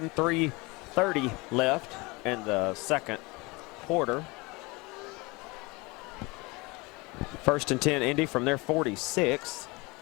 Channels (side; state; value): right; quieter; 25.2 dB